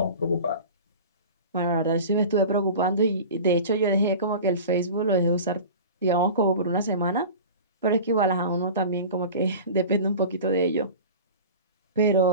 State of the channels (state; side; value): inverted; both; correlation -0.35